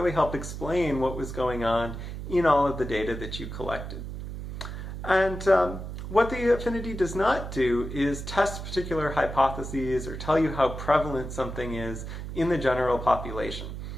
help explain what was going on in all of the data that you collected. And what the affinity does not do is test particular hypotheses or tell you how prevalent something is in the general population.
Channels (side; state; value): right; noise; hum, 8 dB below the sound